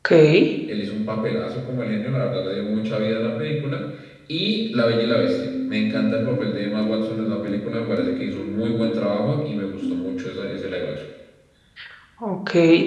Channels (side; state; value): both; identical; correlation 1.00